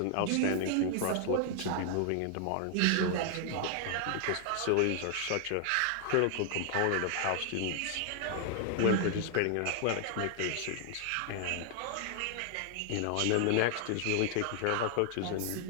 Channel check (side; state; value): both; different; correlation 0.00